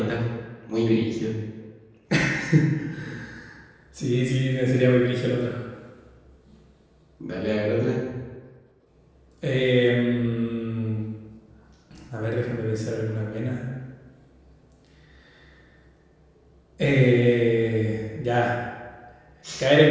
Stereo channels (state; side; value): identical; both; correlation 1.00